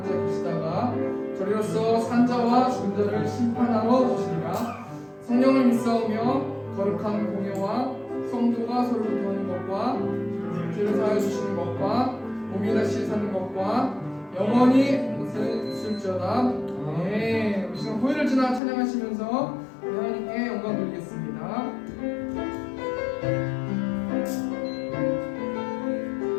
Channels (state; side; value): drops out; right; at 18.6 s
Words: 자 계시다가 저리로서 산자와 죽은 자를 심판하러 오시리라. 성령을 믿사오며 거룩한 공예와 성도가 서로 교통하는 것과 죄를 사하여 주시는 것과 몸이 다시 사는 것과 영원히 있을지어다. 네, 우리 시간 고요를 지나 찬양하시면서 하나님께 영광 돌리겠습니다.